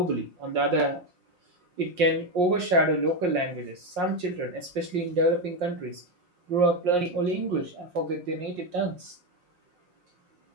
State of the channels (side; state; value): left; late; 5.6 ms